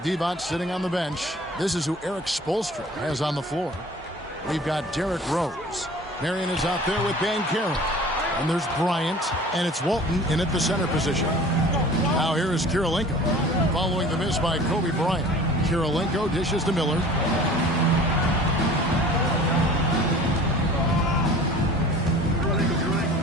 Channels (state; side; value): normal; both; correlation 0.44